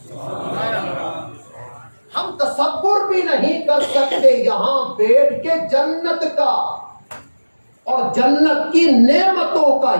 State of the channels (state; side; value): inverted; both; correlation -1.00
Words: ہم تصور بھی نہیں کر سکتے یہاں بیٹھ کے جنت کا اور جنت کی نعمتوں کا،